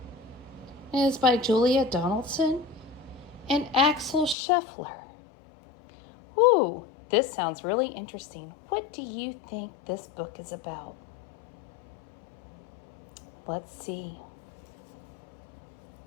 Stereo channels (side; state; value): right; drops out; at 4.4 s